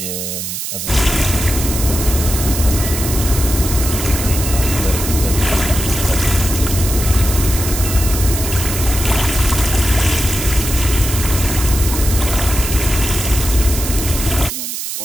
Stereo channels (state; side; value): noise; right; hiss, 5 dB below the sound